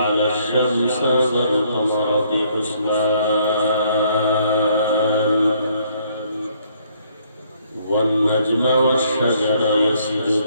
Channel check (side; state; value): both; inverted; correlation -0.67